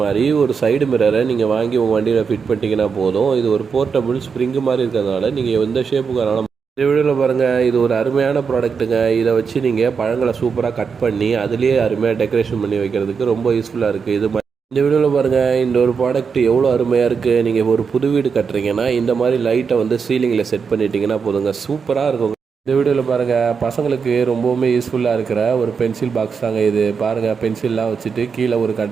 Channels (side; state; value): left; quieter; 5.9 dB